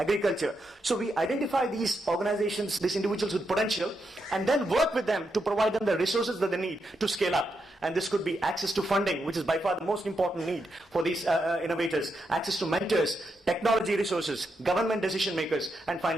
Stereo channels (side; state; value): both; normal; correlation 0.83